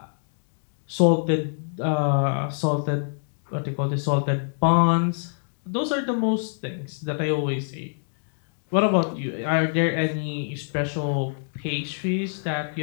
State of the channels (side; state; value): right; silent; digital silence